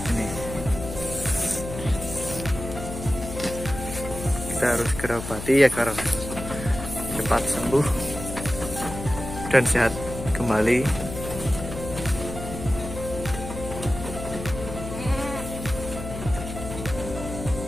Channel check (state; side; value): noise; left; hum, 8 dB below the sound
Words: Ini kita harus segera obati agar cepat sembuh dan sehat kembali.